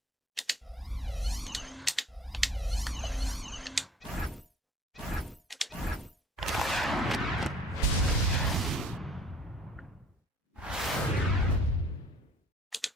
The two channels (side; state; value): both; normal; correlation 0.53